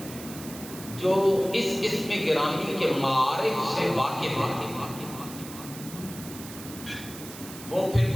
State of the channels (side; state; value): right; noise; hiss, 14 dB below the sound